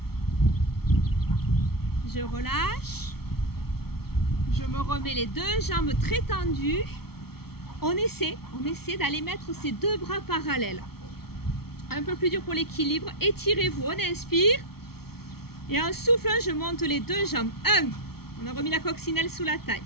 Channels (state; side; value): late; right; 0.95 ms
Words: je relâche. Je me remets les deux jambes très tendues. On essaie d'aller mettre ces deux bras parallèles. Un peu plus dur pour l'équilibre. Étirez-vous, on inspire. Et en soufflant, je monte les deux jambes. 1, on a remis la coccinelle sous la taille.